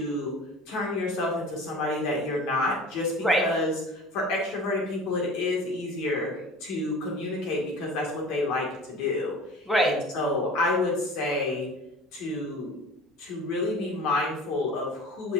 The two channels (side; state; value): both; normal; correlation 0.40